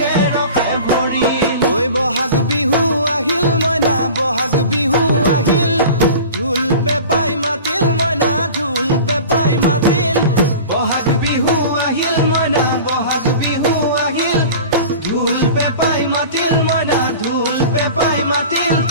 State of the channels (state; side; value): inverted; both; correlation -0.37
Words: ৰখে ভৰিল ঐ বহাগ বিহু আহিল মইনা বহাগ বিহু আহিল ঢোল পেপাই মাতিল মইনা ঢোল পেপাই মাতিল বহাগ বিহু আহিল মইনা বহাগ বিহু আহিল ঢোল পেপাই মাতিল মইনা ঢোল পেপাই মাতিল